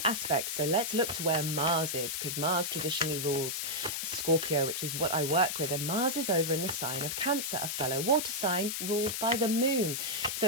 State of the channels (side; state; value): left; noise; hiss, 2 dB below the sound